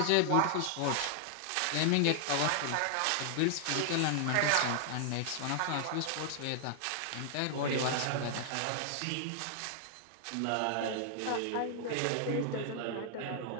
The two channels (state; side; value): different; both; correlation 0.00